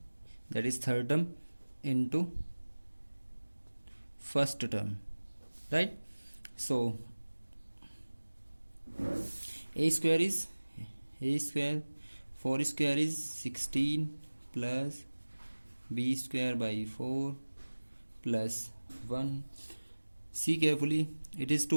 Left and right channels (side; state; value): both; inverted; correlation -1.00